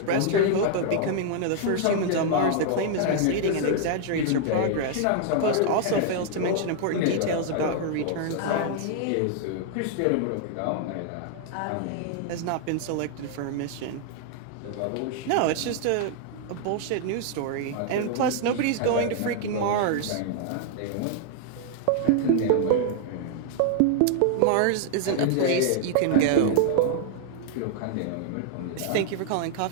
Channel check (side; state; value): both; different; correlation 0.00